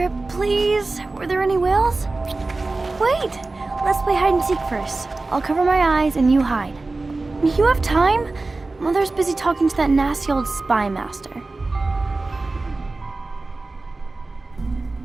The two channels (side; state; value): left; quieter; 3.4 dB